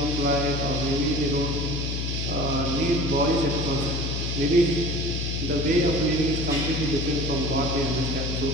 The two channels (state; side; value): noise; left; hum, 2 dB below the sound